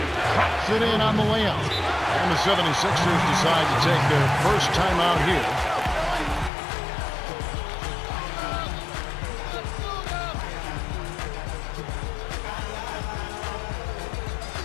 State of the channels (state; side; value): drops out; right; at 6.5 s